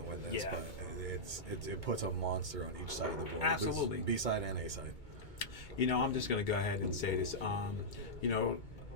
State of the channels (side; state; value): right; late; 2.2 ms